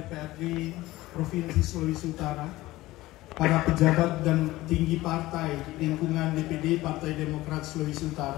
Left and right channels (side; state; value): right; quieter; 17.9 dB